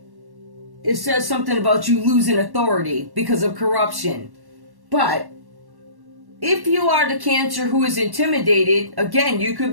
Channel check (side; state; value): left; late; 1.1 ms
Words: It says something about you losing authority because of corruption. But if you are the Cancer who is intimidated, again, you could